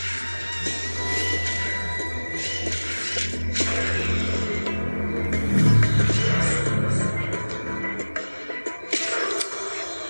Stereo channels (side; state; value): both; inverted; correlation -1.00